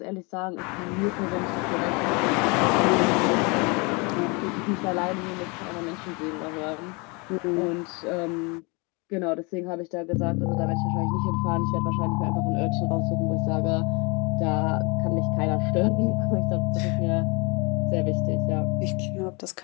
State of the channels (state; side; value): quieter; right; 29.2 dB